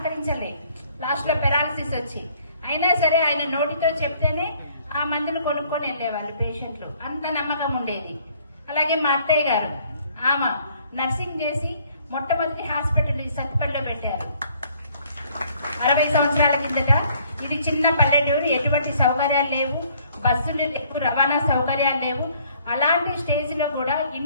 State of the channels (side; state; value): both; inverted; correlation -0.61